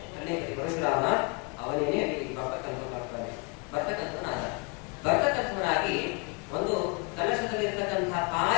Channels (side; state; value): right; quieter; 32.5 dB